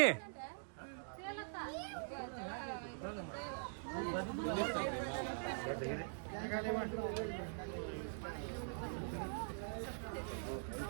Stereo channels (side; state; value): left; silent; digital silence